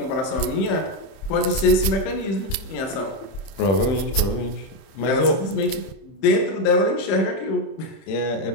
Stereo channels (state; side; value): late; right; 30 ms